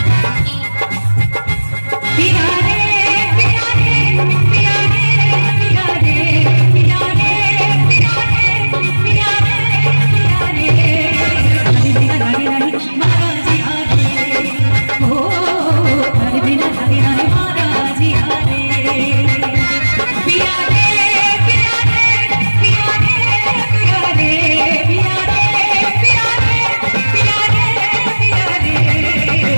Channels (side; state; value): both; inverted; correlation -1.00